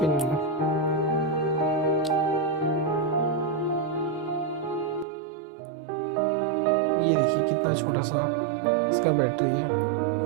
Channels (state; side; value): drops out; left; at 5.1 s